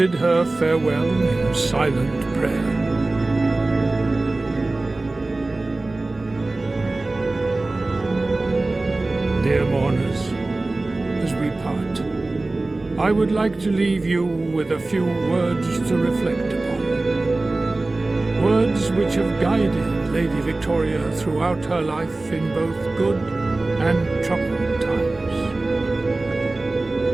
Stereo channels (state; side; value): quieter; left; 3.1 dB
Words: her farewell in silent prayer. Dear mourners, as we part, I would like to leave you with a few words to reflect upon. Words which have guided Lady Victoria throughout her life in both good and troubled times.